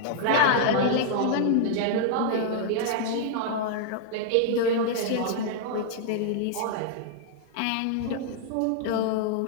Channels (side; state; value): both; different; correlation 0.00